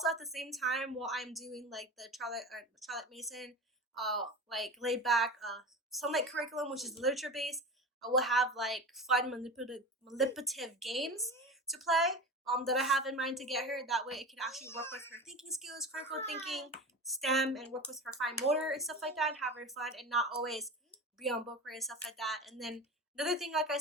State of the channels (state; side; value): normal; both; correlation 0.29